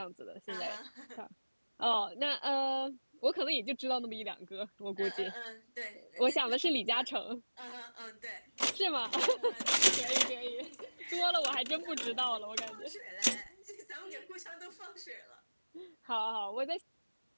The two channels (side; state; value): both; inverted; correlation -1.00